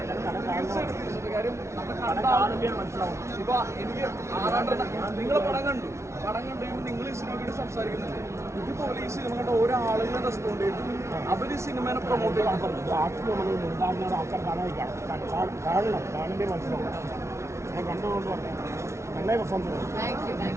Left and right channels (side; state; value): left; late; 0.13 ms